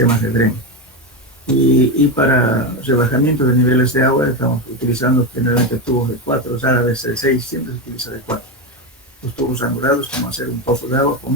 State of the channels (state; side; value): normal; both; correlation 0.13